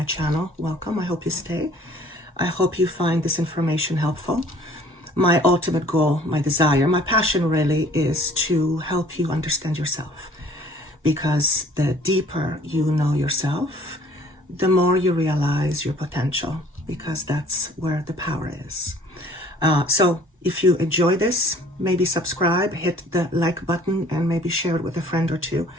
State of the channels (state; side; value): normal; both; correlation 0.54